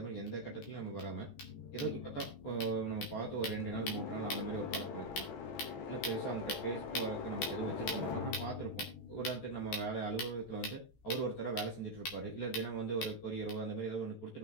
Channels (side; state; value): right; late; 14 ms